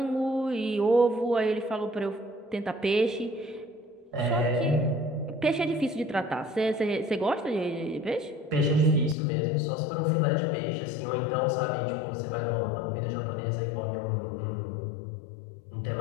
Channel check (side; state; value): right; drops out; at 9.2 s